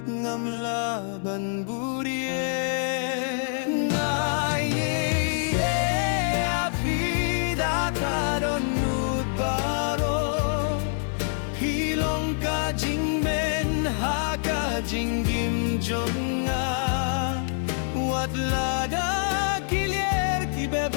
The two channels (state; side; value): silent; right; 61 dB below the other